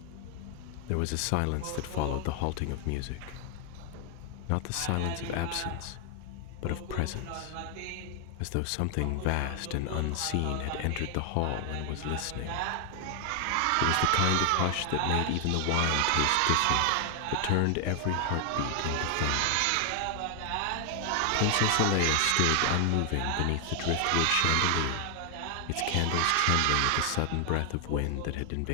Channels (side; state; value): both; different; correlation 0.00